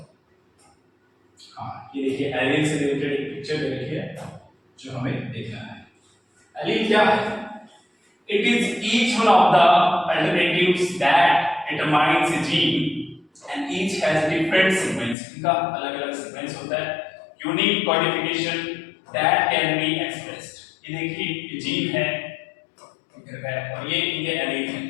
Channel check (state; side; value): drops out; right; at 15.2 s